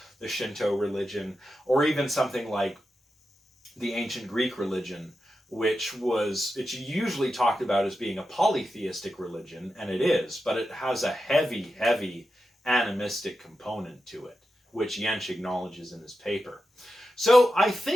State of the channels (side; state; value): both; normal; correlation 0.90